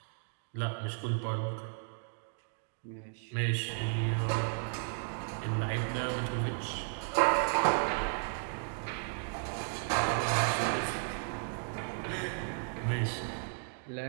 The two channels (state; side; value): silent; left; 55 dB below the other